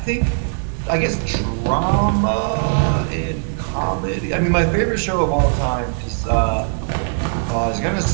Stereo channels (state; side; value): silent; left; digital silence